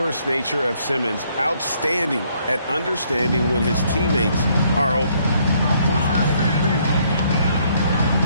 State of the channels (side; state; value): both; inverted; correlation -0.68